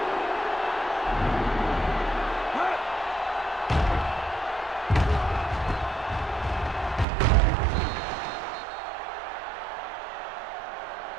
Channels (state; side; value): drops out; left; at 7.1 s